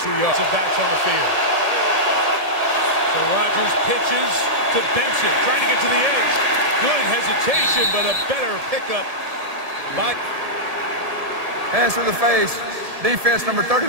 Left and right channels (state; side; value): late; left; 1.7 ms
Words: yards. The backs on the field. So Rodgers pitches to Benson, trying to get to the edge. Good hesitation, but a better pickup by... Hands to the face. Defense number